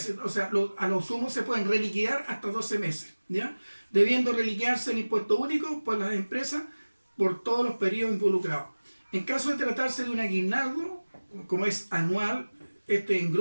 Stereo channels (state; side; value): inverted; both; correlation -1.00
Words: o sea, a lo sumo se pueden reliquidar hasta 12 meses, ¿ya? Debiendo reliquearse el impuesto único por las empresas por todos los periodos involucrados. En caso de tratarse de un aguinaldo, como es anual, este